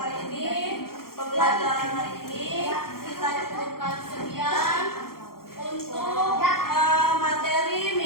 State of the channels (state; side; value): late; right; 0.93 ms